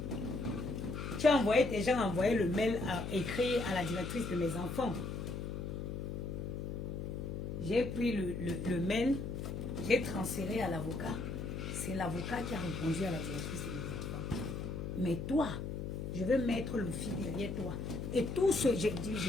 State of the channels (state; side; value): noise; left; hum, 4 dB below the sound